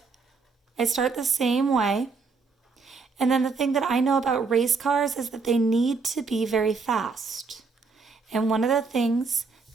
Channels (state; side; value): quieter; left; 4.6 dB